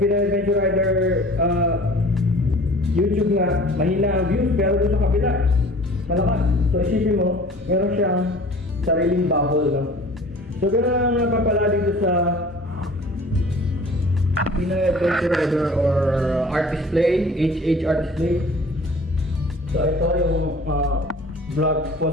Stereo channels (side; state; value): both; normal; correlation 0.46